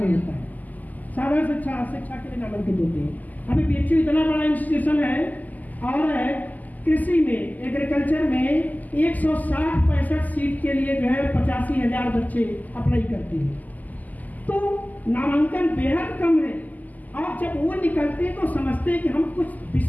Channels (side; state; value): right; late; 0.081 ms